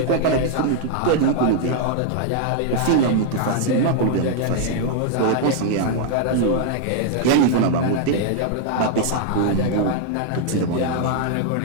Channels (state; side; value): different; both; correlation 0.00